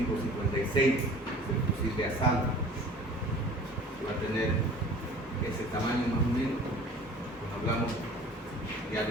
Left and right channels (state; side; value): normal; both; correlation 0.46